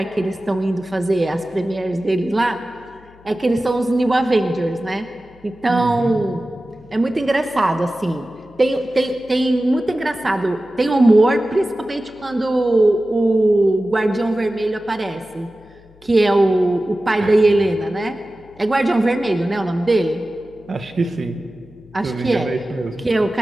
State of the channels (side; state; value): left; noise; hum, 27 dB below the sound